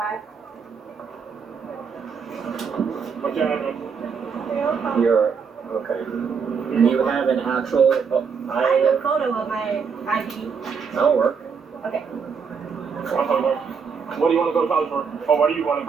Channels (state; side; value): quieter; left; 6.0 dB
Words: What's your address? You're... Okay. You have an actual... I have a photo of my ID. That'll work. Okay. What do you want to go to college for? Or what do you want to